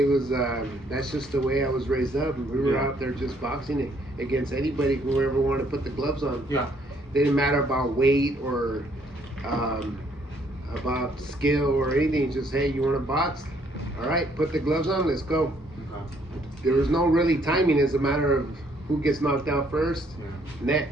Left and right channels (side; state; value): both; normal; correlation 0.67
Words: was that's just the way I was raised up. We were out there just boxing against anybody, whoever wanted to put the gloves on. Yeah. Didn't matter about weight or about skill or anything. Just, hey, you want to box? All right, put the gloves on, let's go. There was no really timing. It's a matter of who gets knocked out first,